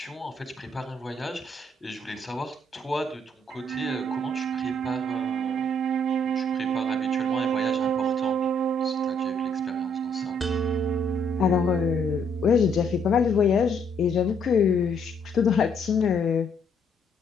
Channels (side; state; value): both; normal; correlation 0.68